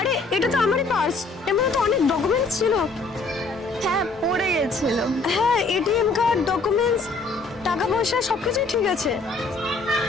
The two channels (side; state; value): right; quieter; 3.6 dB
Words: এটা তো আমারই পার্স, এর মধ্যে তো অনেক ডকুমেন্টস ছিল। হ্যাঁ পড়ে গেছিল। হ্যাঁ, এটিএম কার্ড, ডকুমেন্টস, টাকা পয়সা সবকিছুই ঠিক আছে।